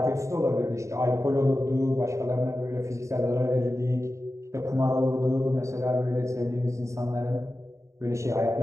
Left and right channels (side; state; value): left; late; 0.14 ms